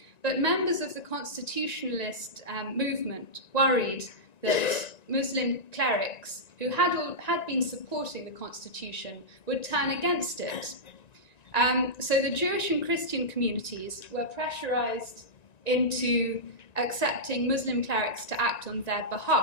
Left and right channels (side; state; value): right; late; 1.9 ms